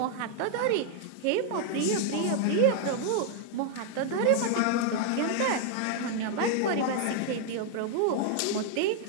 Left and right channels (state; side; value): different; both; correlation 0.00